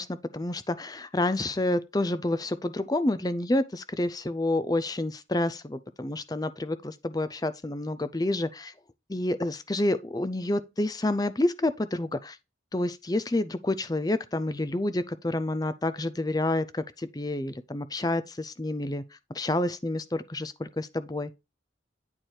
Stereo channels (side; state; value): both; normal; correlation 0.77